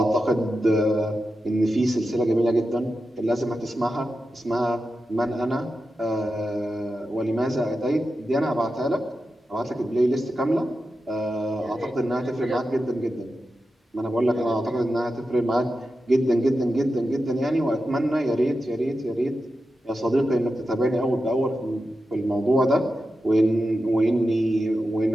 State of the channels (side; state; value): both; normal; correlation 0.90